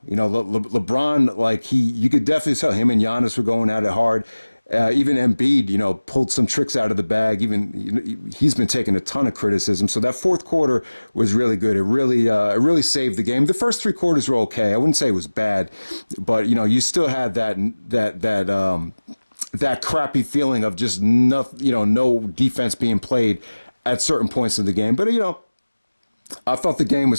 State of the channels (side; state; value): both; inverted; correlation -1.00